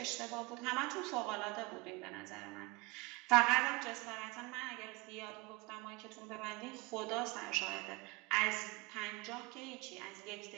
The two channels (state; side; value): quieter; left; 23.9 dB